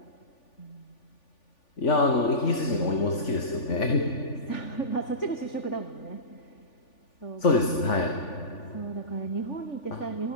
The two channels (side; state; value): right; late; 3.5 ms